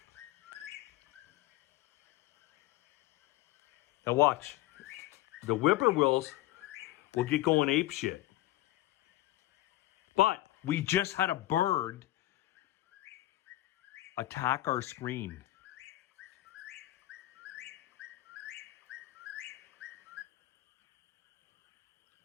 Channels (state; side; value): quieter; right; 16.3 dB